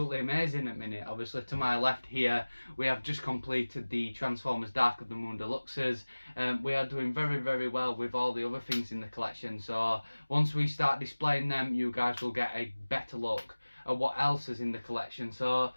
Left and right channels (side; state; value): both; inverted; correlation -1.00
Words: amazing at the minute. Obviously to my left here we have just completed the Transformers Dark of the Moon Deluxes. We are doing very well with all the other things in the collection, so once we start displaying them you guys will get a better look at what else is in the collection. So